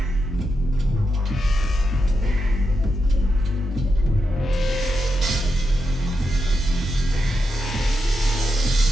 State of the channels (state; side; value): normal; both; correlation 0.86